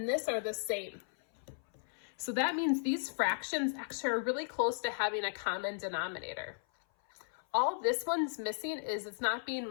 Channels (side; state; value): right; silent; 54 dB below the other